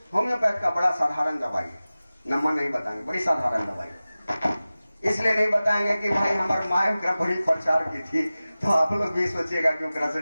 होम्योपैथ का बड़ा साधारण दवाई है, नंबर नहीं बताएंगे, बड़ी साधारण दवाई। इसलिए नहीं बताएंगे कि भाई हमारे माँ बड़ी प्रचार की थी तो आप लोग भी सोचिएगा कि ओकरा से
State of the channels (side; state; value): both; inverted; correlation -0.97